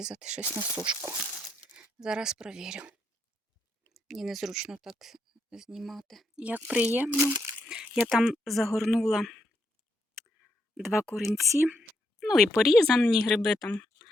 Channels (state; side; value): normal; both; correlation 0.78